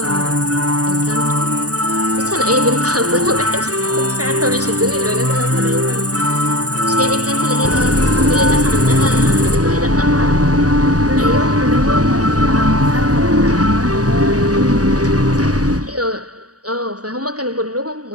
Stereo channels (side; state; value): left; late; 0.68 ms